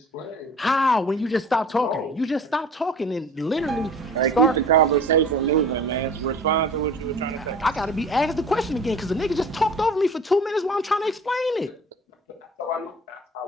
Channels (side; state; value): both; normal; correlation 0.45